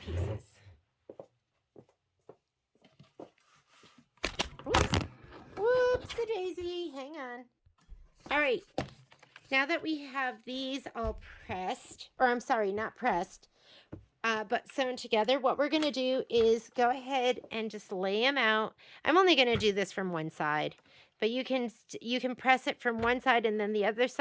Whoopsie-daisy, hang on. All right, now that we have these all pressed, or I'm sorry, not pressed, but sewn together, what we're going to do is go ahead and just lay them out. I'm only going to do this from one side, but you can press it from one side and then the other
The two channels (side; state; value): both; identical; correlation 1.00